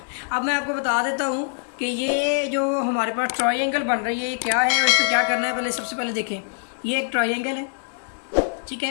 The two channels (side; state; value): right; silent; digital silence